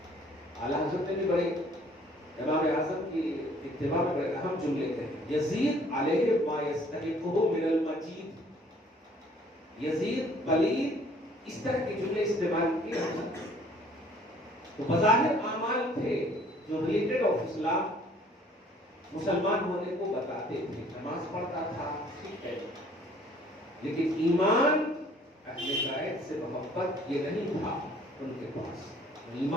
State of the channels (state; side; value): normal; both; correlation 0.57